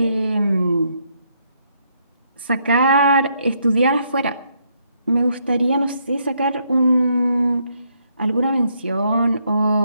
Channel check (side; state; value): both; inverted; correlation -0.74